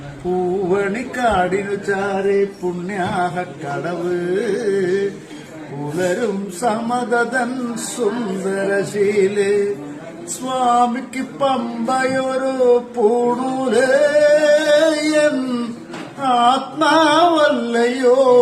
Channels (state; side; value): identical; both; correlation 1.00